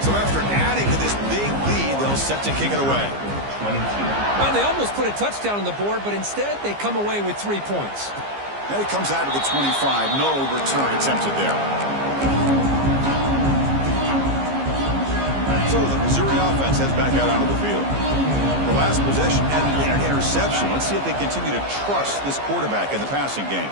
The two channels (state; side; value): late; left; 15 ms